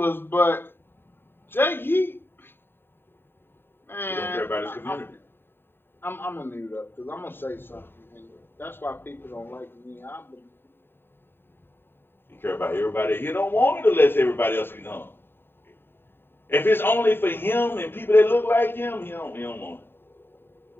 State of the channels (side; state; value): right; late; 0.10 ms